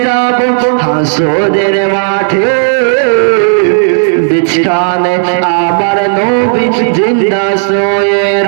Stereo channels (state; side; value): silent; left; digital silence